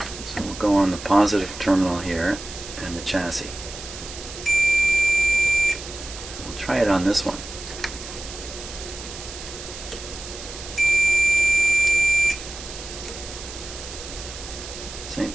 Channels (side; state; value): right; noise; hiss, 12 dB below the sound